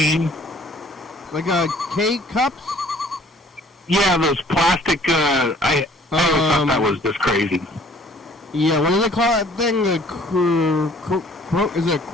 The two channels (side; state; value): both; normal; correlation 0.56